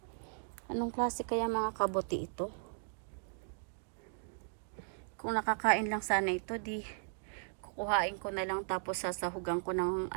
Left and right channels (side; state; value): left; silent; digital silence